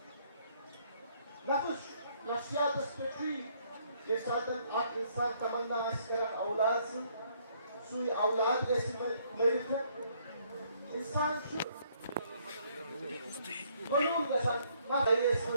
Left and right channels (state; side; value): inverted; both; correlation -0.67